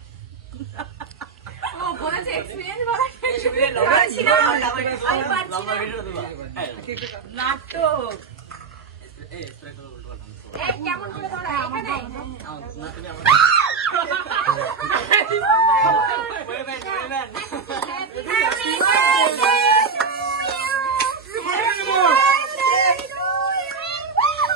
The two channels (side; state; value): left; quieter; 5.1 dB